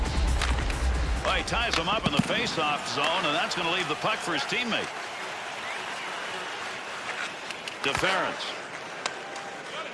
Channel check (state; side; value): identical; both; correlation 1.00